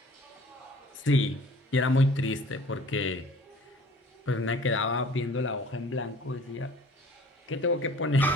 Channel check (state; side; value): normal; both; correlation 0.49